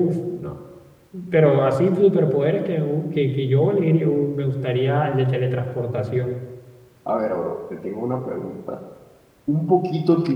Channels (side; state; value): both; identical; correlation 1.00